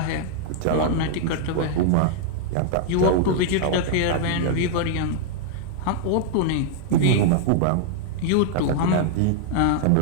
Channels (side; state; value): both; different; correlation -0.01